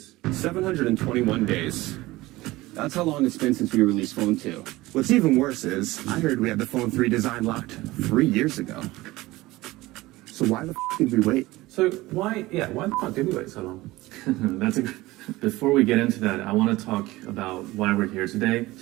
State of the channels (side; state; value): left; quieter; 19.1 dB